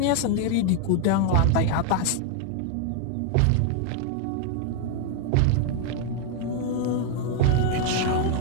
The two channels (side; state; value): both; different; correlation 0.00